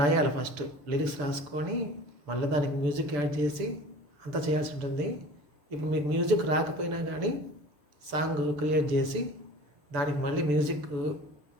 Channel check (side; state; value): left; late; 6.9 ms